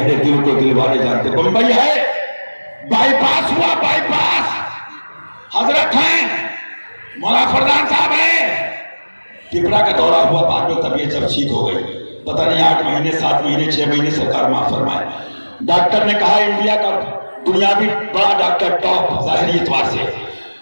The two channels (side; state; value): both; inverted; correlation -1.00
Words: دل کو دل والے جانتے۔ بمبئی ہے، بائی پاس ہوا، بائی پاس، حضرت ہیں، مولا فردان صاحب ہیں، ٹپرا کا دورہ ہوا، بعد میں طبیعت جب ٹھیک ہو گئی، پتہ نہیں 8 مہینے 7 مہینے 6 مہینے سرکار معاف فرمائے۔ ڈاکٹر نے کہا انڈیا کا دنیاوی بڑا ڈاکٹر ٹاپ ظاہری اعتبار سے